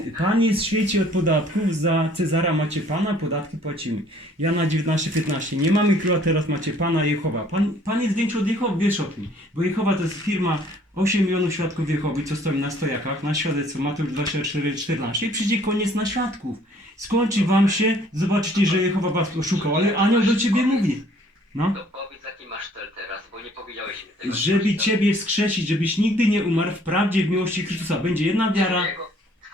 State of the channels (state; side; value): normal; both; correlation 0.58